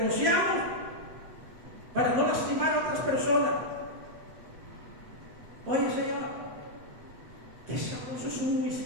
para no lastimar a otras personas. Oye, Señor, qué sabroso es un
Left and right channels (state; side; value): late; left; 8.1 ms